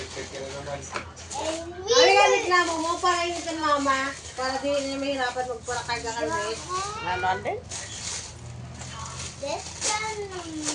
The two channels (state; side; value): identical; both; correlation 1.00